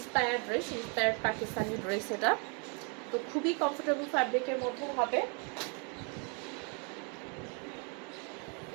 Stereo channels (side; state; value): left; quieter; 36.5 dB